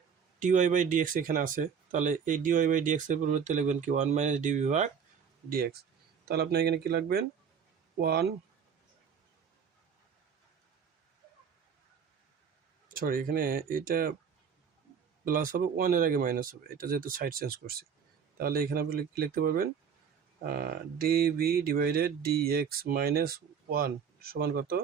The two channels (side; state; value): left; quieter; 7.1 dB